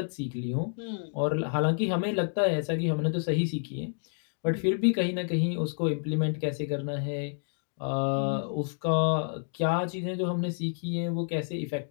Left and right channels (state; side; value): silent; right; digital silence